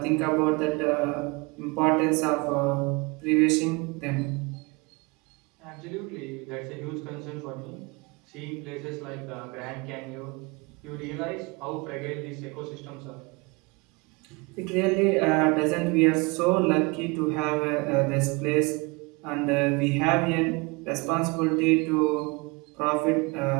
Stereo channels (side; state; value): left; quieter; 27.4 dB